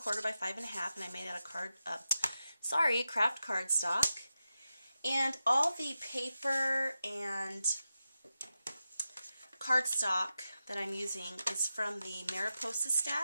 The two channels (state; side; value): inverted; both; correlation -0.91